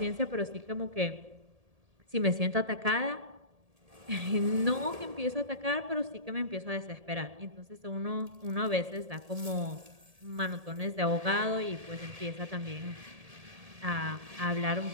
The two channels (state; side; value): late; left; 1.7 ms